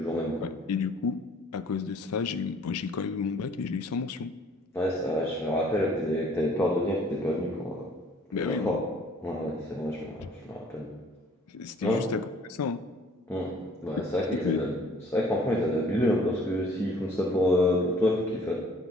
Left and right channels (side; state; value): both; normal; correlation 0.56